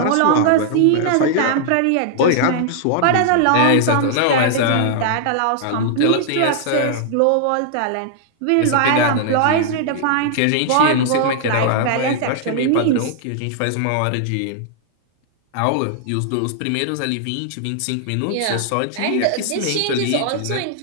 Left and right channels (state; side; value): different; both; correlation -0.01